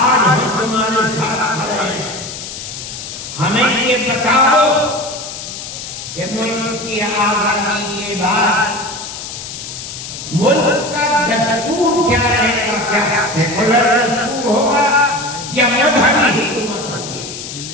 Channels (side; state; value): left; noise; hiss, 9 dB below the sound